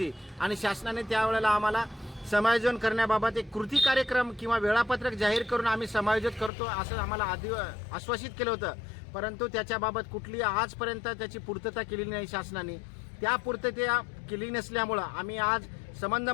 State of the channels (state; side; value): drops out; right; at 6.5 s